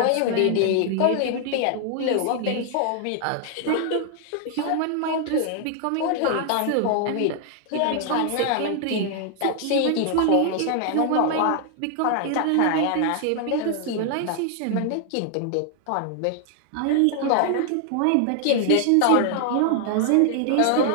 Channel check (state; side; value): different; both; correlation 0.00